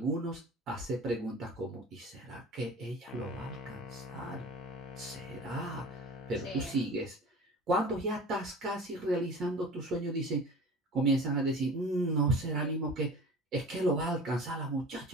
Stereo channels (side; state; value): both; normal; correlation 0.38